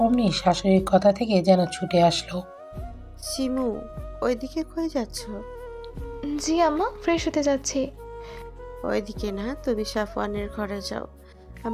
অমনি শাশুড়ির কথা থেকে যেন ছুটে আসলো। শিমু, ওইদিকে কই যাচ্ছ? জি আম্মা, ফ্রেশ হতে যাচ্ছি। ওইদিকে না, তুমি সাফওয়ানের ঘরে যাও।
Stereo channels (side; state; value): both; identical; correlation 1.00